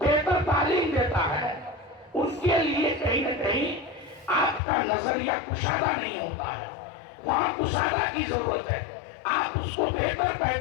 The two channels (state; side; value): drops out; right; at 4.6 s